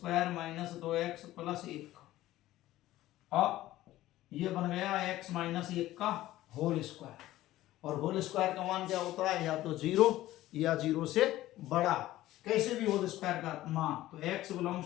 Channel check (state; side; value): quieter; right; 15.4 dB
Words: minus 2x plus 1। अब ये बन गया x माइनस 1 का होल स्क्वायर, और होल स्क्वायर का मान क्या होता है, या तो 0 या 0 से बड़ा, कैसे भी होल स्क्वायर का मान। तो x